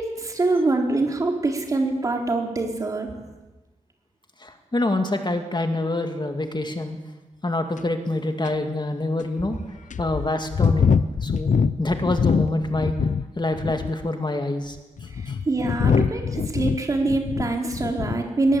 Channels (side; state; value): both; normal; correlation 0.80